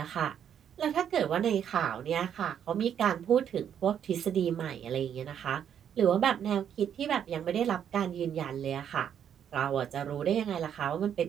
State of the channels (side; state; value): left; quieter; 8.9 dB